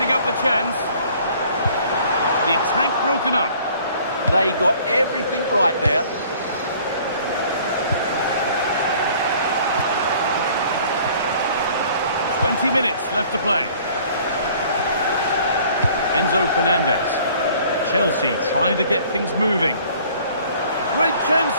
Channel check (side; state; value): both; inverted; correlation -0.54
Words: up the chance. The attack broken up. They got everything right there. "20 minutes left to play. Enzo Fernandez. Chelsea trying to get things moving. Great chance